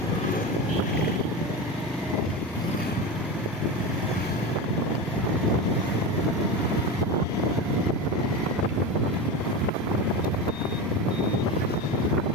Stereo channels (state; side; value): normal; both; correlation 0.22